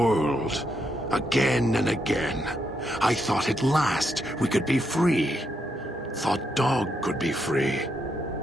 again and again, I thought at last we could be free. Thought Dog could be free.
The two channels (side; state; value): both; normal; correlation 0.79